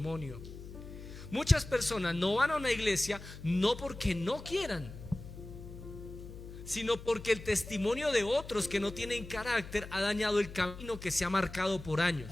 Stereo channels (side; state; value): left; noise; hum, 13 dB below the sound